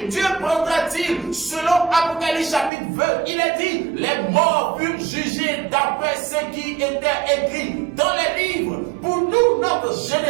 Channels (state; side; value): drops out; left; at 2.7 s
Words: Dieu prendra-t-il? Selon Apocalypse chapitre 20, il est dit, les morts furent jugés d'après ce qui était écrit dans les livres. Pour nous, notre